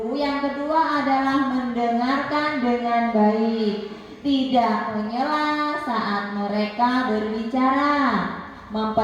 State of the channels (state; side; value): identical; both; correlation 1.00